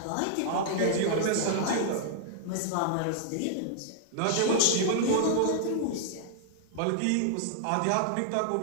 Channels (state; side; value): different; both; correlation -0.01